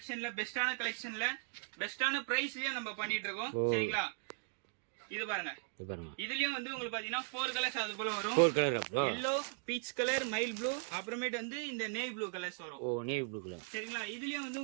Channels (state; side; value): silent; left; 52 dB below the other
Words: பெஸ்டான பிரைஸ்லயே நம்ம பண்ணிட்டு இருக்கோம். சரிங்களா, இது பாருங்க. இதுலயும் வந்து உங்களுக்கு பாத்தீங்கன்னா 4 கலர்ஸ் அது போல வரும். 4 கலர் அப்புறம் yellow, peach colour, mile blue, அப்புறமேட்டு வந்து இந்த நேவி ப்ளூ கலர்ஸ் வரும். Navy blue colour. சரிங்களா, இதுலயும் வந்து